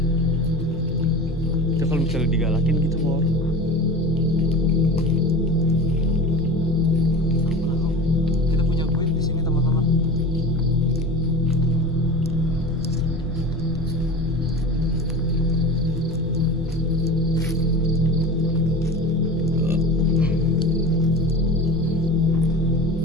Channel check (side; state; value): both; normal; correlation 0.34